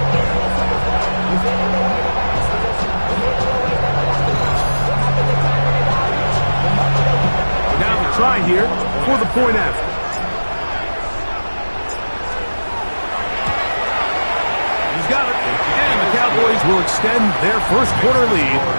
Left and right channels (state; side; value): inverted; both; correlation -1.00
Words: Try here for the point after. He's got it. And the Cowboys will extend their 1st quarter lead.